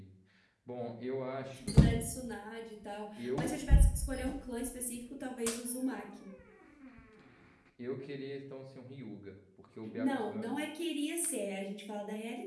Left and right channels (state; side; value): identical; both; correlation 1.00